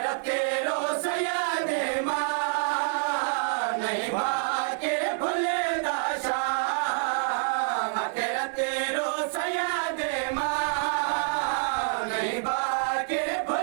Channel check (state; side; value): silent; left; 60 dB below the other